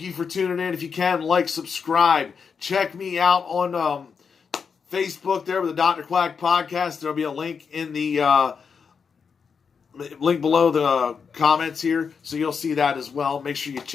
you for tuning in. If you can, like, subscribe. Check me out on Facebook there with the Dr. Quack Podcast. There'll be a link in the link below the comments here, so you'll see that as well. Make sure you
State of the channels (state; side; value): quieter; right; 6.0 dB